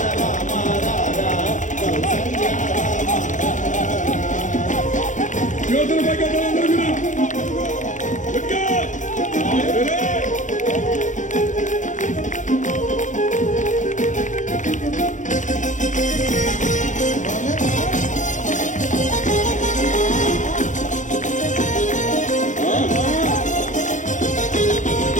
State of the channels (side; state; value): right; late; 0.36 ms